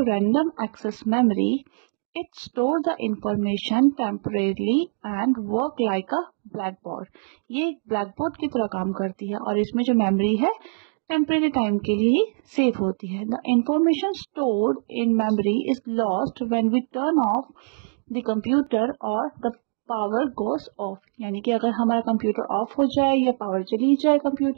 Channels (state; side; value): silent; left; digital silence